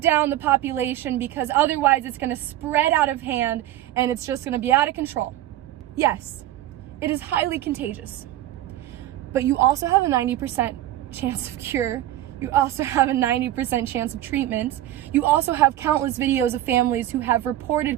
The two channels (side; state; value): left; quieter; 13.9 dB